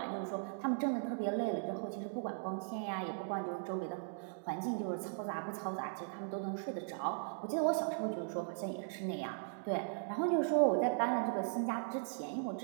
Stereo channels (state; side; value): silent; left; digital silence